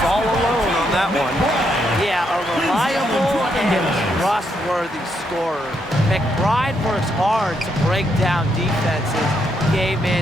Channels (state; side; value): normal; both; correlation 0.77